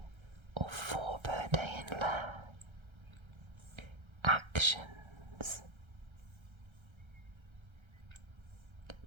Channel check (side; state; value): left; late; 1.3 ms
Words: or 4 per day in lair. Actions: